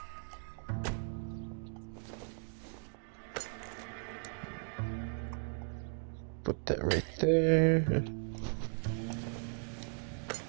Put that right there.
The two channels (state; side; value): silent; left; 53 dB below the other